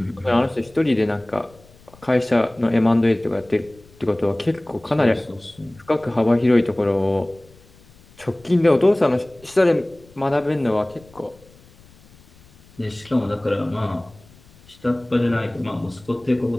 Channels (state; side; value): noise; left; rumble, 26 dB below the sound